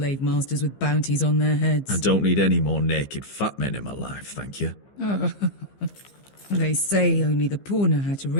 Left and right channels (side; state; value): right; late; 15 ms